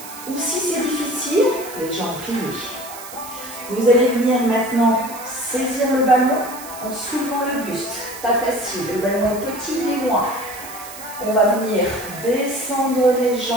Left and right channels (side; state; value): right; noise; hiss, 14 dB below the sound